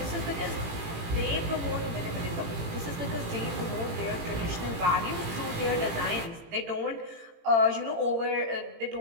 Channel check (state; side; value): late; left; 18 ms